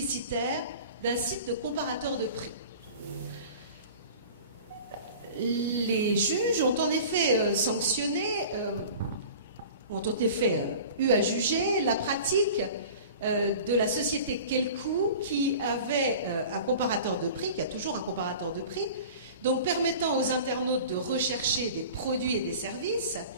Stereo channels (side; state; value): both; inverted; correlation -0.40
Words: d'un site de comparateur de prix. Les juges ont en effet sanctionné, ont en effet eu à juger la pratique de la société Kelkoo qui avait un comparateur de prix, qui a toujours un comparateur de prix, donc permettant aux internautes de rechercher des produits et des services,